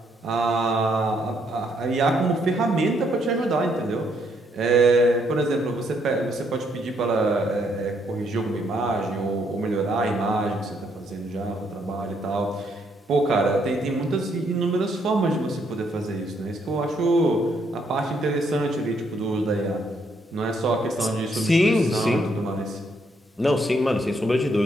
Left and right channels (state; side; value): normal; both; correlation 0.72